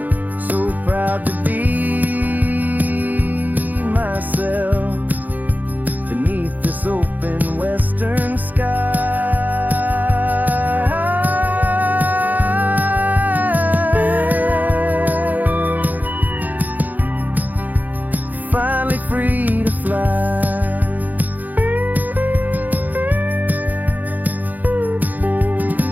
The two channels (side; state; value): left; late; 0.082 ms